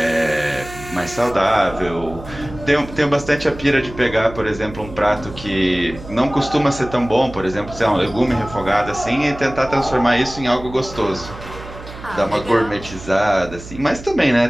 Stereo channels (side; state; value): right; noise; hum, 14 dB below the sound